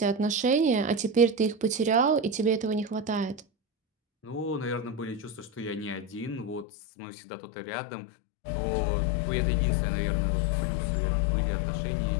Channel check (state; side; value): drops out; right; at 6.7 s